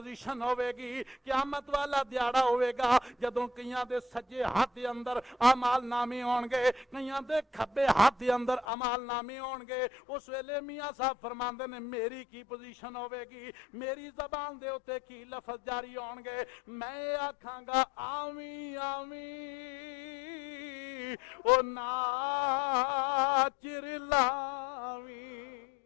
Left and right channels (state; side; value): drops out; right; at 8.7 s